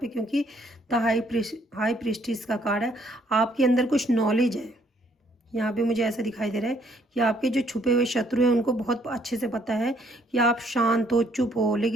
क्योंकि द हाई प्रिस्टिस का कार्ड है, आपके अंदर कुछ नॉलेज है। यहाँ पे मुझे ऐसा दिखाई दे रहा है कि आपके जो छुपे हुए शत्रु हैं उनको बहुत अच्छे से पता है कि आप शांत हो, चुप हो,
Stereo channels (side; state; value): both; normal; correlation 0.66